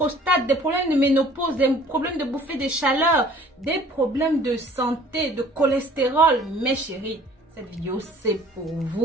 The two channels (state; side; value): normal; both; correlation 0.53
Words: des problèmes de ménopause, des problèmes de bouffée de chaleur, des problèmes de santé, de cholestérol, mes chéris, cette vidéo, c'est pour